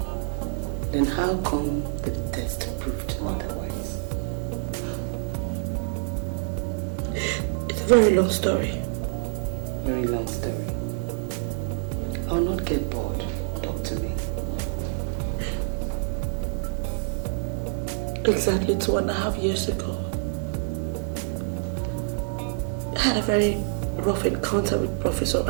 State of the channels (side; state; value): left; silent; digital silence